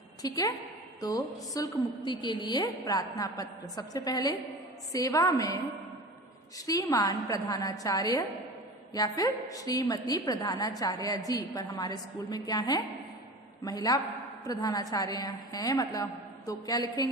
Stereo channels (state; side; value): normal; both; correlation 0.34